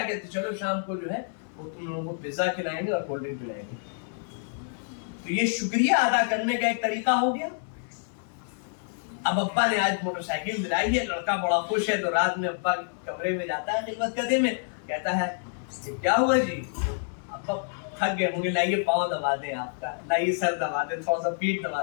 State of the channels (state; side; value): silent; right; digital silence